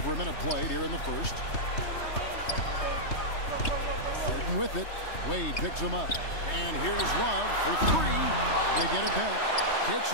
a minute played here in the first. Harden with it. Wade picks him up. And here's Love for 3. They get it back. Kicks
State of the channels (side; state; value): right; late; 3.2 ms